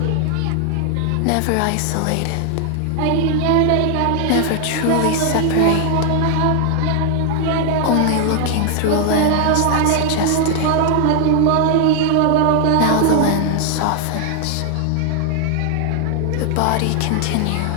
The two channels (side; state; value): both; different; correlation 0.00